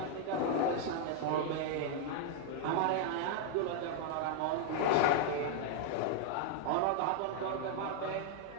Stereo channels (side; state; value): both; different; correlation 0.00